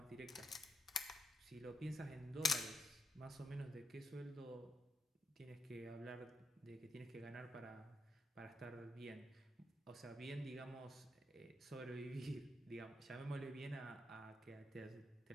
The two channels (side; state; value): both; normal; correlation 0.77